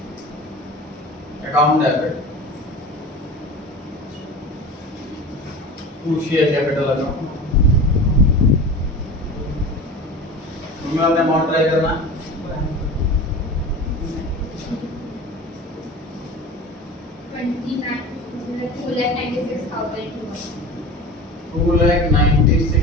account debit to share capital account. तुम्हें अपने अमाउंट ट्राई करना है।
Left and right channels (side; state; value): both; normal; correlation 0.34